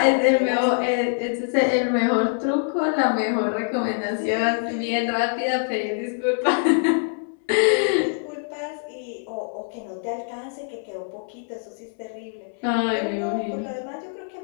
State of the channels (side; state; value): right; silent; 62 dB below the other